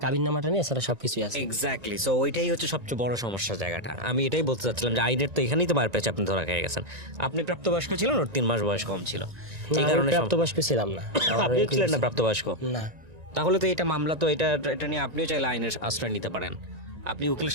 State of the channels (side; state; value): left; late; 1.9 ms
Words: কাবিন নামাটা নিয়ে সেটা সবকিছু আছে। এক্স্যাক্টলি, সো ওইটাই হচ্ছে সবচেয়ে বড় সমস্যা জায়গাটা। আমি এটাই বলতে চাচ্ছিলাম যে আইনের তো এখানেই তো মার পেয়েছে, আপনি ধরা খেয়ে গেছেন। আপনি প্রাপ্তবয়স্ক ছিলেন, ওর 3 মাস বয়স কম ছিল, এই কারণে প্রাপ্তবয়স্ক ছিলাম না। আপনি ছিলেন না প্রাপ্তবয়স্ক? না। তাহলে তো এটা মামলা, তো এটা নিয়ে আপনিও চাইলে আইনের আশ্রয় নিতে পারেন। আপনি উকিলের